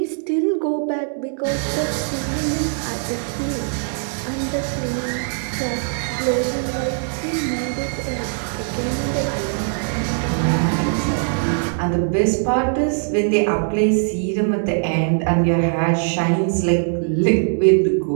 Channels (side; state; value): left; silent; digital silence